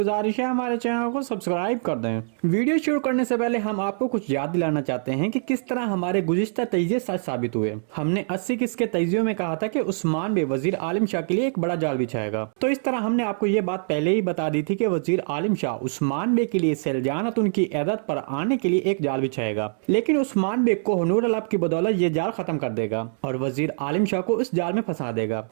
है हमारे चैनल को सब्सक्राइब कर दें। वीडियो शुरू करने से पहले हम आपको कुछ याद दिलाना चाहते हैं कि किस तरह हमारे गुज़िश्ता तजिए सच साबित हुए। हमने 80 किस्त के तजियों में कहा था कि उस्मान बे वजीर आलिम शाह के लिए एक बड़ा जाल बिछाएगा। तो इस तरह हमने आपको ये बात पहले ही बता दी थी कि वजीर आलिम शाह उस्मान बे के लिए सल्जनात उनकी इयादत पर आने के लिए एक जाल बिछाएगा, लेकिन उस्मान बे कोहनूर अलब की बदौलत ये जाल खत्म कर देगा और वजीर आलिम शाह को इस जाल में फंसा देगा।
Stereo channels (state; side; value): silent; left; digital silence